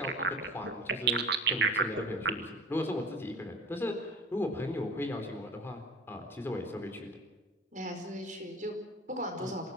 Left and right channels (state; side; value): normal; both; correlation 0.38